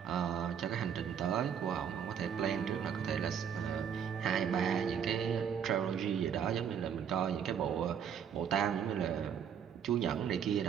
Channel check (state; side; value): quieter; left; 8.1 dB